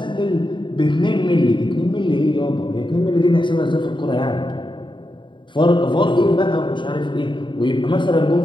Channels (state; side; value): late; right; 0.23 ms